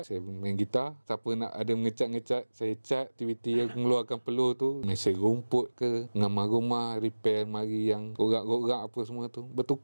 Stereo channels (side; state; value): both; inverted; correlation -1.00